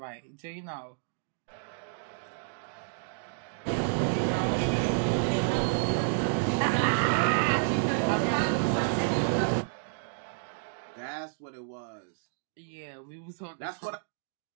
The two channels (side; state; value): left; silent; digital silence